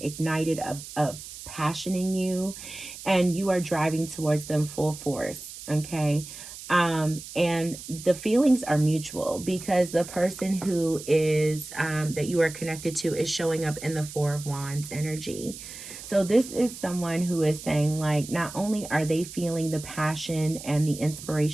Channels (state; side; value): noise; right; hiss, 13 dB below the sound